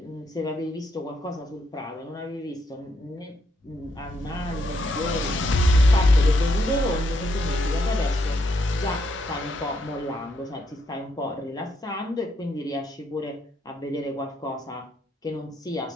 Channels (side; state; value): both; normal; correlation 0.77